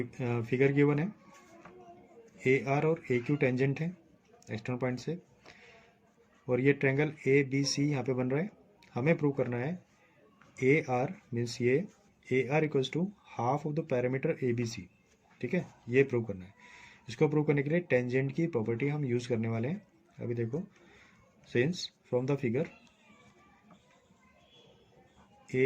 फिगर गिवन है, ए आर और ए क्यू टेंजेंट है एक्सटर्नल पॉइंट से, और ये ट्रायंगल ए बी सी यहाँ पे बन रहा है, हमें प्रूव करना है ए आर मीन्स ये A R equals to half of the parameter A B C, ठीक है, ये प्रूव करना है। इसको प्रूव करने के लिए टेंजेंट की प्रॉपर्टी हम यूज़ करने वाले हैं। अभी देखो, since from the figure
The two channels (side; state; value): both; identical; correlation 1.00